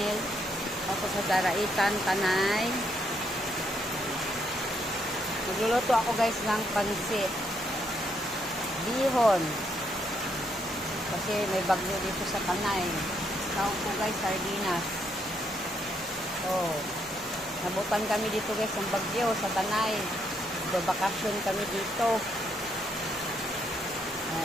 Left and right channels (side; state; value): both; normal; correlation 0.75